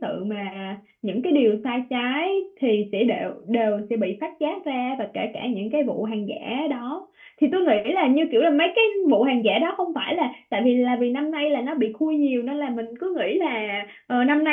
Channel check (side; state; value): both; identical; correlation 1.00